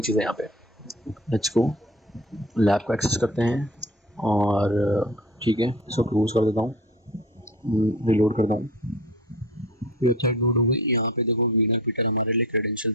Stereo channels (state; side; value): normal; both; correlation 0.38